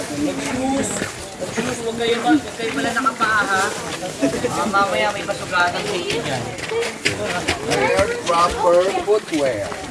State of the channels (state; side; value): identical; both; correlation 1.00